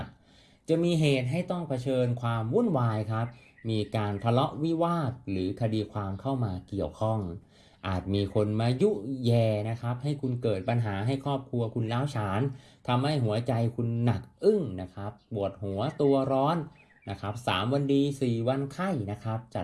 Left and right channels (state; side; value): identical; both; correlation 1.00